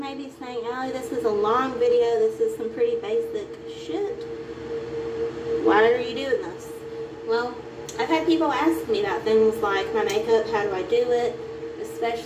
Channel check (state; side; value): identical; both; correlation 1.00